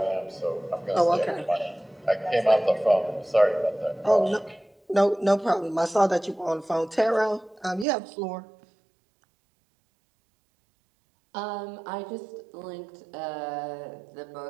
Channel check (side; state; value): left; drops out; at 7.9 s